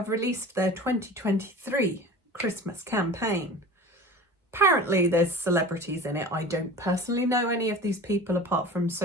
released their 2023 Christmas campaign. Apparently there's celebrities in it. I don't personally know any of these people apart from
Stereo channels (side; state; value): both; normal; correlation 0.38